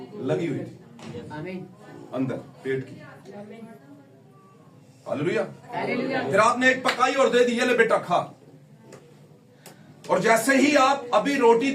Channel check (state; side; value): identical; both; correlation 1.00